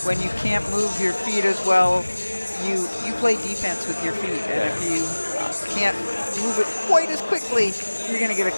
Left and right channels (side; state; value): both; inverted; correlation -1.00